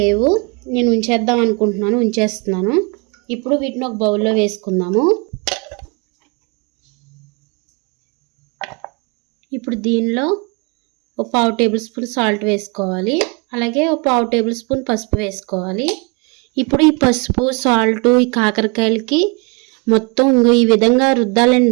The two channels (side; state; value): left; quieter; 31.2 dB